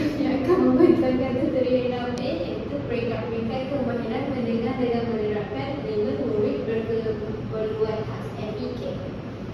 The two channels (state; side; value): identical; both; correlation 1.00